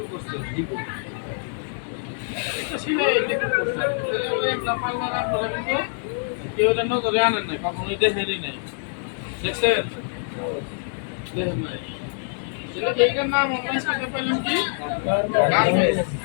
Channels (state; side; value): silent; right; digital silence